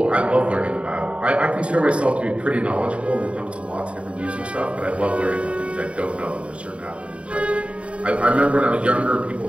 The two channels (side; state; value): left; late; 0.061 ms